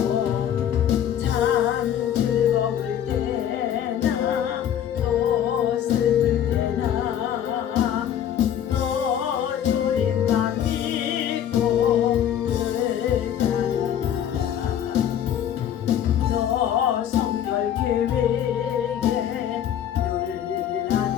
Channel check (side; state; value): right; quieter; 10.0 dB